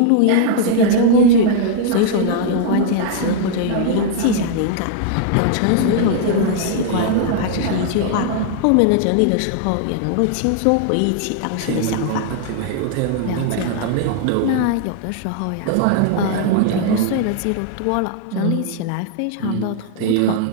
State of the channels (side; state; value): both; different; correlation -0.01